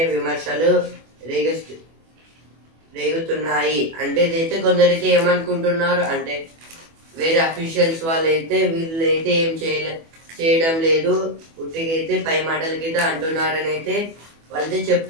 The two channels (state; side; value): late; left; 24 ms